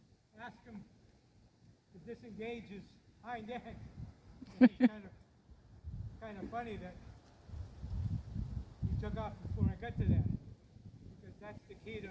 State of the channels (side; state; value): both; identical; correlation 1.00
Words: ask him to disengage his hind end. And it's kind of funny that he took off before I got to that, because that's the key